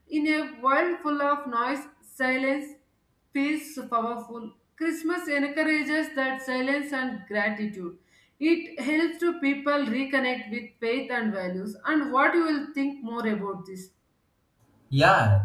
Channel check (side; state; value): both; identical; correlation 1.00